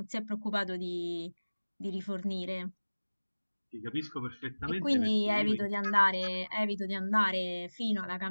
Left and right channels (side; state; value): both; inverted; correlation -1.00